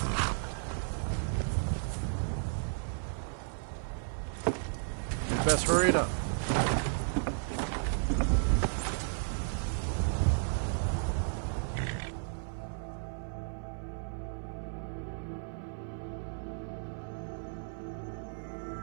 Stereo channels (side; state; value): left; silent; 55 dB below the other